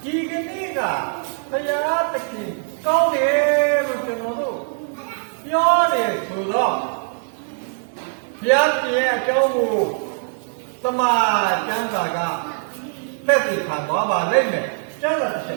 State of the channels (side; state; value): left; silent; digital silence